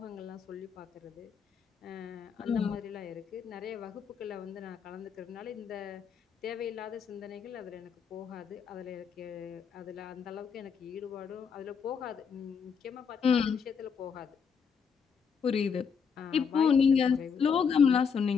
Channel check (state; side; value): quieter; right; 6.4 dB